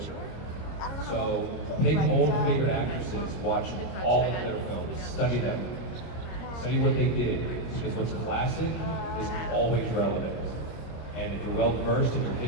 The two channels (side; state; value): right; late; 25 ms